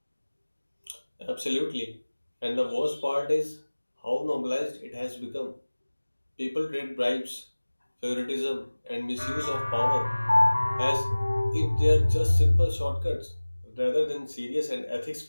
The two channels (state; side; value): inverted; both; correlation -1.00